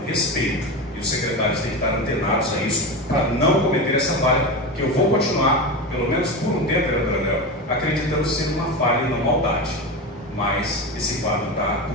respeito. E os secretários têm que estar antenados a isso para não cometer essa falha, que eu vou continuar, pelo menos por um tempo, vereador André, acreditando ser uma falha e não maldade. Mas esse quadro está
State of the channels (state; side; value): normal; both; correlation 0.21